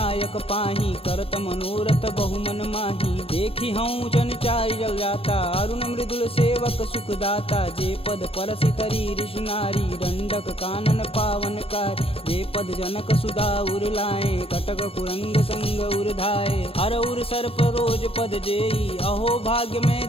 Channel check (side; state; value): right; late; 0.27 ms